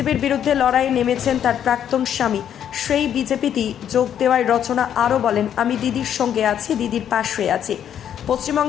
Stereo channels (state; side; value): quieter; right; 9.6 dB